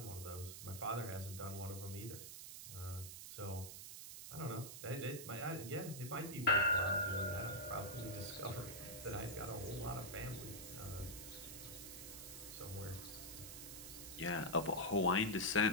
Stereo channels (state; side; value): noise; right; hiss, 9 dB below the sound